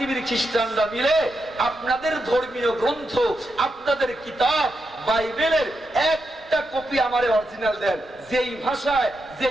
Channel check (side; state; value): both; normal; correlation 0.85